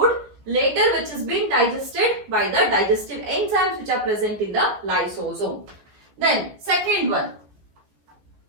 later which has been digested by the digestive enzymes which are present in the lysosome. Then second one.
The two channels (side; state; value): left; late; 15 ms